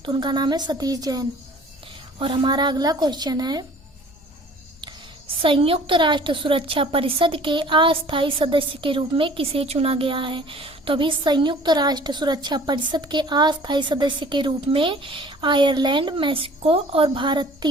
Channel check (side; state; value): left; noise; hum, 28 dB below the sound